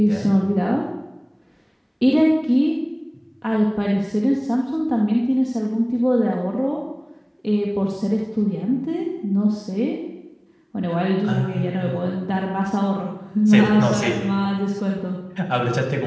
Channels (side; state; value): both; identical; correlation 1.00